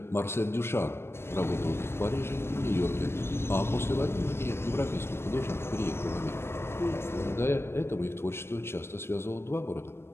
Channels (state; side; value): late; right; 0.12 ms